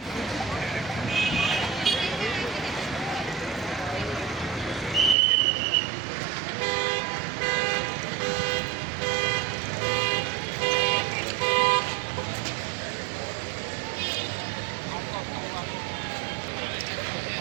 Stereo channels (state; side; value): drops out; left; at 5.2 s